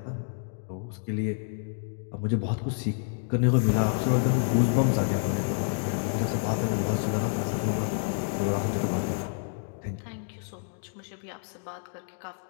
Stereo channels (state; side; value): silent; right; digital silence